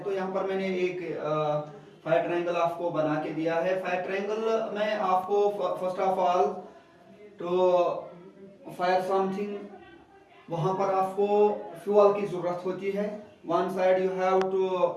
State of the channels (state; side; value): identical; both; correlation 1.00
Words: तो यहाँ पर मैंने एक फायर ट्रायंगल आपको बना के दिया है। फायर ट्रायंगल में आपको फर्स्ट ऑफ ऑल तो फायर समथिंग, वहां पर आपको फ्यूल की जरूरत होती है। One side you have to